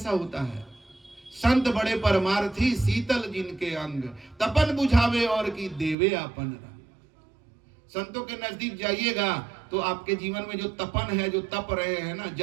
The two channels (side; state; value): left; drops out; at 6.0 s